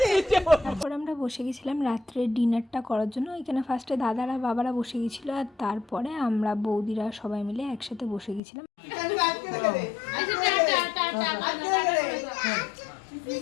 তারপর আমরা বসে গেছিলাম রাত্রের ডিনারটা করার জন্য। এখানে ফার্স্টে দাদারা বাবারা বসে গেছিলো, আর তারপরে আমরা বৌদিরা সবাই মিলে একসাথে বসে গেছিলাম।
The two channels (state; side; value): drops out; right; at 8.4 s